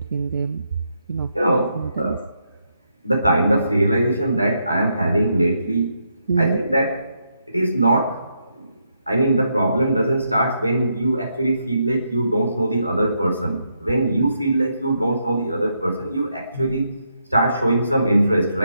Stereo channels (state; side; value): inverted; both; correlation -0.79